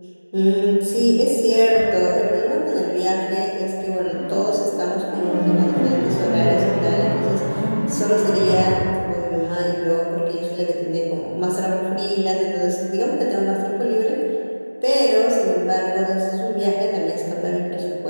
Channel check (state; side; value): inverted; both; correlation -1.00